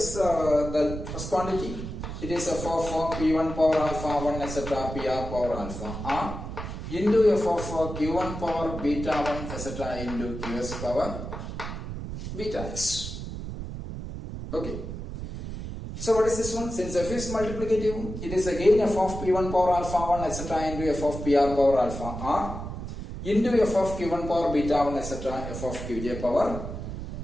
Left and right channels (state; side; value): noise; right; rumble, 7 dB below the sound